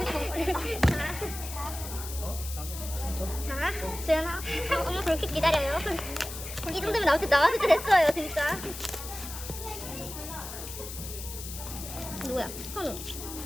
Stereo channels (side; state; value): left; noise; hiss, 10 dB below the sound